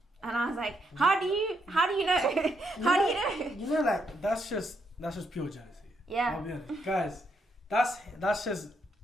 And I was like, how do you know? How do you know? You know, like, that's just pure jealousy. Yeah. I'll be honest. Guys, that's just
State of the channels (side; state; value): both; normal; correlation 0.77